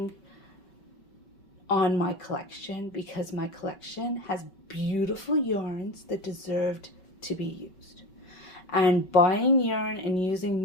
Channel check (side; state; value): right; late; 5.2 ms